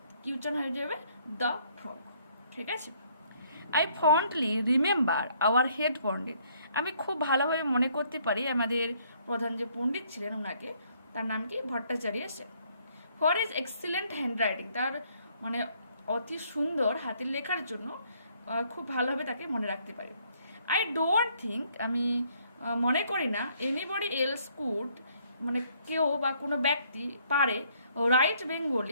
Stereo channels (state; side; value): inverted; both; correlation -0.66